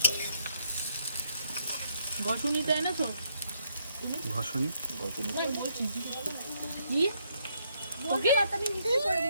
ঘষুনি তো এনেছো? ঘষনি ওই বলছি কি ওকে আমি মিক্সি করে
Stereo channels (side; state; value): both; inverted; correlation -0.74